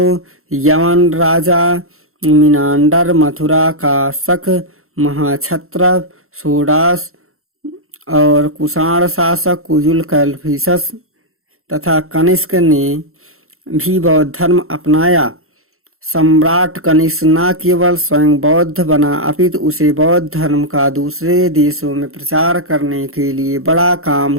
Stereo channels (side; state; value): left; late; 0.62 ms